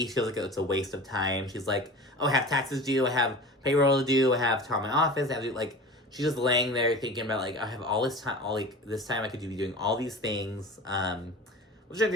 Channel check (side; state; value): both; normal; correlation 0.36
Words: feels like it's a waste of time. She's like, oh, I have taxes due. I have payroll to do. I have to call my office. I have to do, like, she's just laying there thinking about, like, I have all this time. This time I could be doing all these things. Which I